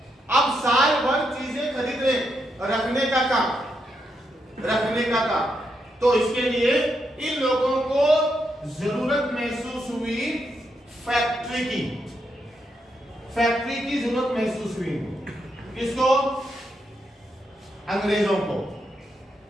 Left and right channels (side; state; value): both; normal; correlation 0.81